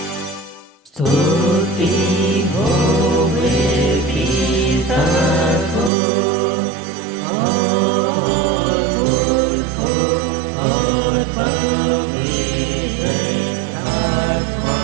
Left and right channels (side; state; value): left; drops out; at 5.9 s